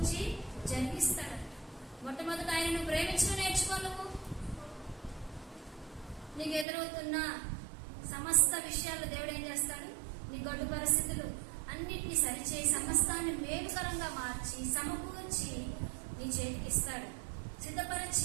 జరిగిస్తాడంట. మొట్టమొదట ఆయన నువ్వు ప్రేమించడం నేర్చుకో. నువ్వు నీకు ఎదురవుతున్న సమస్త విషయాలు దేవుడు ఏం చేస్తాడు, నీ గడ్డు పరిస్థితులు అన్నిటినీ సరిచేయి సమస్తాన్ని మేలుకరంగా మార్చి సమకూర్చి నీ చేతికి ఇస్తాడు,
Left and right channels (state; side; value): drops out; left; at 6.7 s